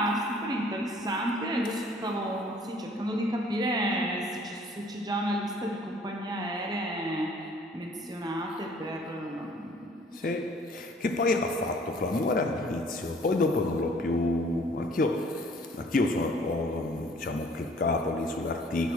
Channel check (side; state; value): both; normal; correlation 0.55